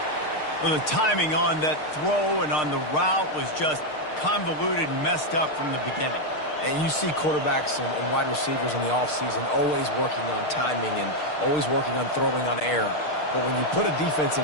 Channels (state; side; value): late; right; 6.6 ms